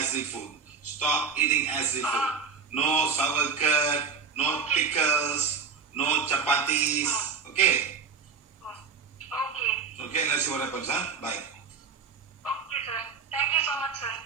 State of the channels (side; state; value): left; quieter; 5.8 dB